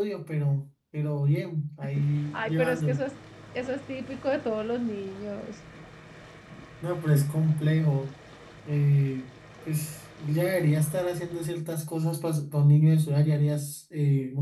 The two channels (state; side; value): identical; both; correlation 1.00